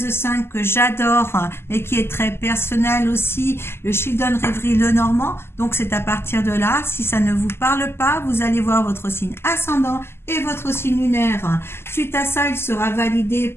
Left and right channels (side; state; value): right; late; 0.12 ms